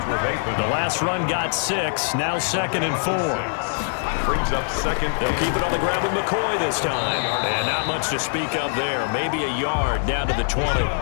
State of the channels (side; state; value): right; silent; 56 dB below the other